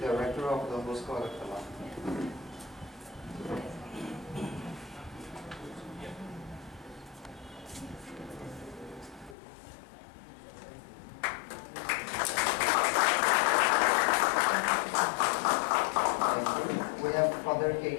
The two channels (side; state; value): right; drops out; at 9.3 s